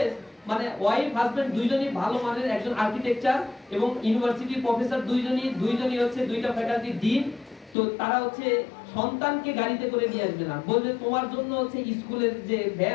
মানে ওয়াইফ হাজবেন্ড দুইজনই ভালো মানের একজন আর্কিটেকচার এবং ইউনিভার্সিটির প্রফেসর, দুইজনই হচ্ছে দুইটা ফ্যাকাল্টি ডিন। তো তারা হচ্ছে সন্তানকে গাড়িতে করে নিয়ে আসবে না, বলবে তোমার জন্য হচ্ছে স্কুলের যে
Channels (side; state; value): right; drops out; at 7.8 s